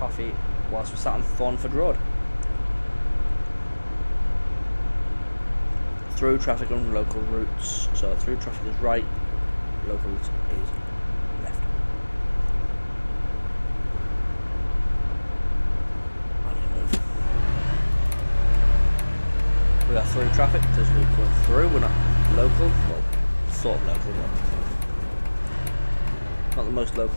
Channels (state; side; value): inverted; both; correlation -1.00